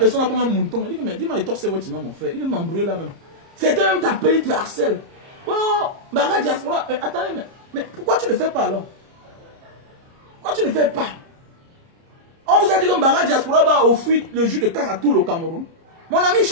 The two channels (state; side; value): late; left; 30 ms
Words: là comme un mouton. Il dit que, mais dis-moi, il torse votre nom, mon frère. Il veut m'embrouiller là même. C'était même t'appeler, il te harcèle. Oh, Mbanga Diaspora, attendez, mais pourquoi tu ne le fais pas alors? Pourquoi tu ne le fais pas? On vous a dit que Mbanga Diaspora va offrir le jus de canne à tout le Cameroun. Mon ami,